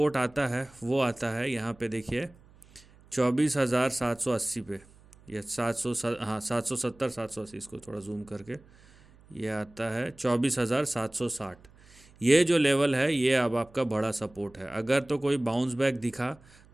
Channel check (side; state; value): right; noise; hum, 26 dB below the sound